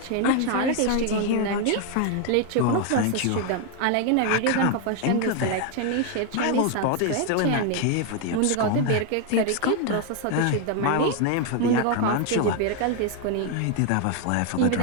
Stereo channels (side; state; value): both; different; correlation 0.01